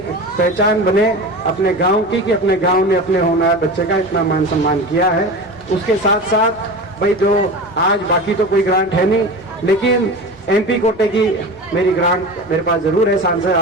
पहचान बने अपने गांव की कि अपने गांव ने अपने होनहार बच्चे का इतना मान सम्मान किया है। उसके साथ साथ भाई जो आज बाकी तो कोई ग्रांट है नहीं, लेकिन MP कोटे की मेरी ग्रांट मेरे पास जरूर है। सांसद,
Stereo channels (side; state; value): both; normal; correlation 0.30